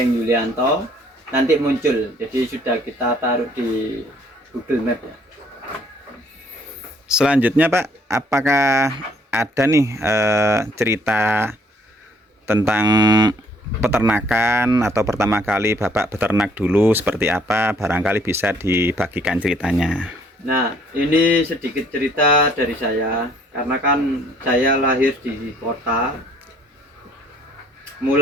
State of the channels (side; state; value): both; normal; correlation 0.62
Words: Yulianto. Nanti muncul. Jadi sudah kita taruh di Google Map ya. Selanjutnya Pak, apakah ada nih cerita tentang peternakan atau pertama kali Bapak beternak dulu seperti apa? Barangkali bisa dibagikan ceritanya. Nah, ini sedikit cerita dari saya, karena kan saya lahir di kota.